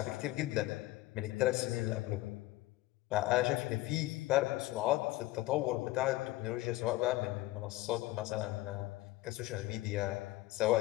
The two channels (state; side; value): quieter; right; 17.8 dB